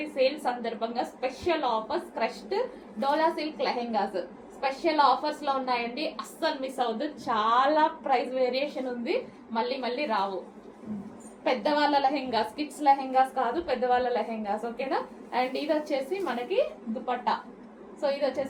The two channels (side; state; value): both; identical; correlation 1.00